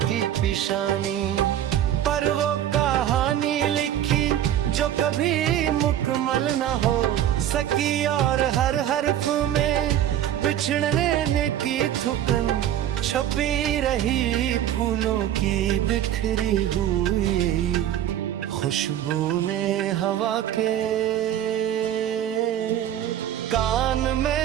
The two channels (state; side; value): quieter; left; 11.3 dB